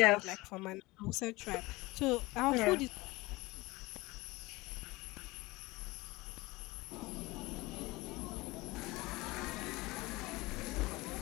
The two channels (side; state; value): right; quieter; 21.5 dB